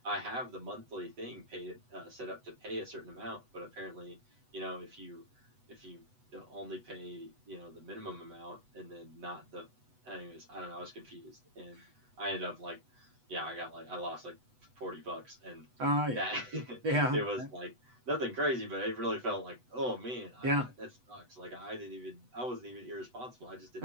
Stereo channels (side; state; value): left; late; 8.1 ms